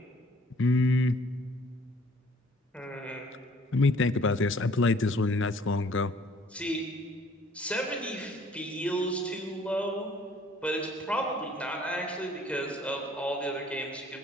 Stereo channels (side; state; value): both; normal; correlation 0.57